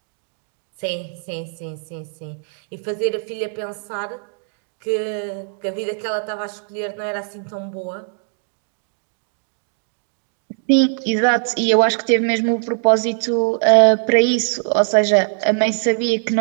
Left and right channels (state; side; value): silent; left; digital silence